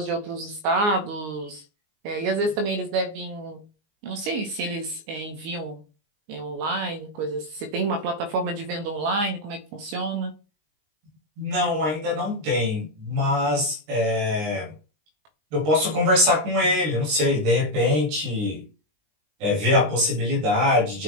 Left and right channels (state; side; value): late; left; 19 ms